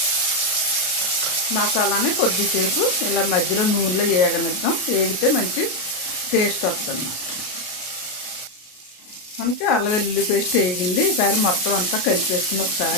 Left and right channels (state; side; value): late; right; 33 ms